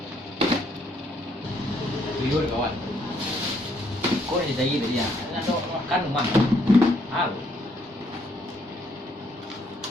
Tuyul kawan. Kau ni jadi dia. Nak makan rumah.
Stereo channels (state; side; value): normal; both; correlation 0.70